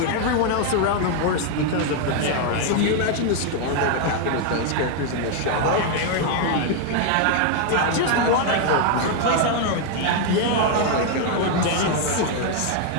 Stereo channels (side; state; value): both; different; correlation 0.00